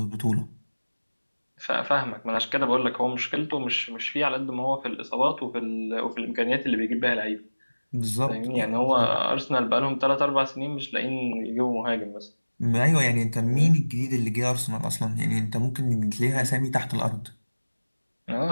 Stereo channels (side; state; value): both; inverted; correlation -1.00